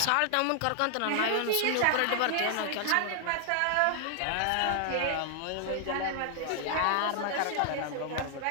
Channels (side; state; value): both; different; correlation 0.00